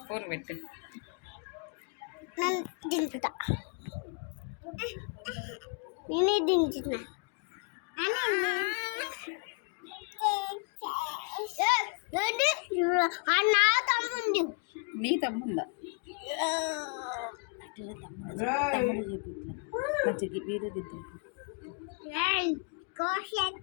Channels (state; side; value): quieter; right; 36.6 dB